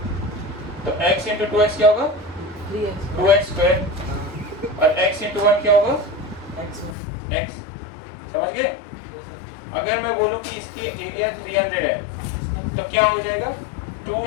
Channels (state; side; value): drops out; right; at 7.0 s